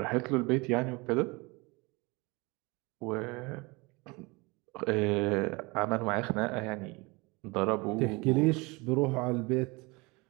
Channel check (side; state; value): left; quieter; 25.9 dB